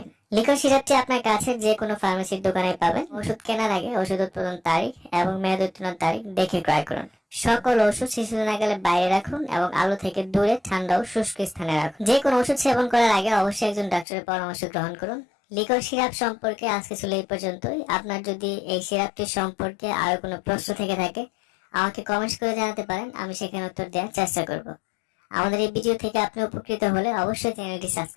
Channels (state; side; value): drops out; right; at 14.1 s